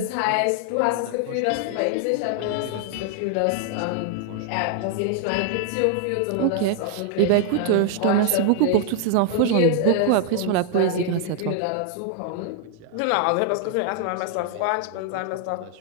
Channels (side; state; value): both; different; correlation 0.00